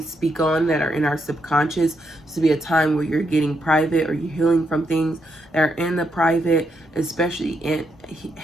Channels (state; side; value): normal; both; correlation 0.80